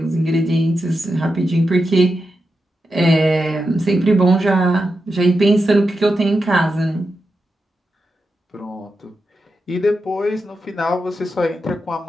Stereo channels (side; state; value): both; normal; correlation 0.88